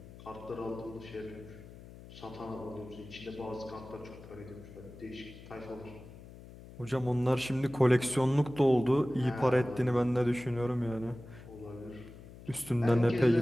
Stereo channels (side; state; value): left; noise; hum, 17 dB below the sound